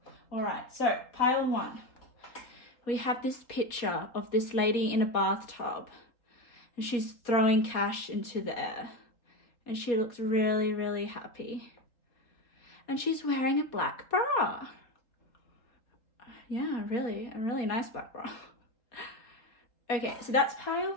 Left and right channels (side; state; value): right; late; 4.2 ms